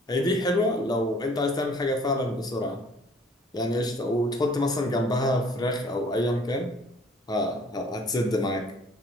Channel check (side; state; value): both; normal; correlation 0.55